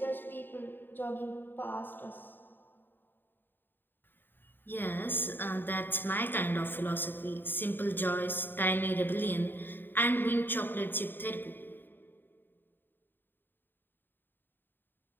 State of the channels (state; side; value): late; right; 0.094 ms